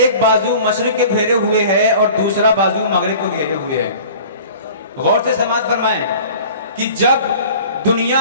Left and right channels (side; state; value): both; inverted; correlation -0.44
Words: بازو مشرق کے گھیرے ہوئے ہے اور دوسرا بازو مغرب کو گھیرے ہوئے ہے. غور سے سماعت فرمائیں کہ جب